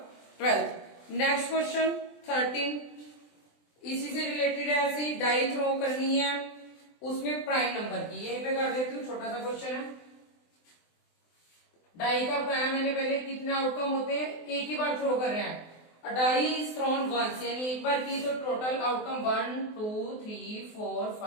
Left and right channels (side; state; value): right; late; 24 ms